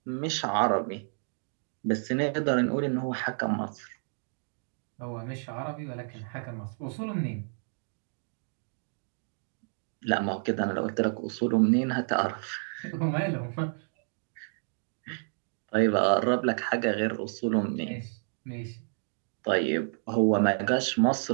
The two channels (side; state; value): left; silent; 58 dB below the other